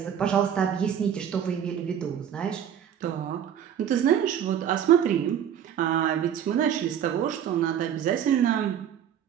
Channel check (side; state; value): left; quieter; 9.2 dB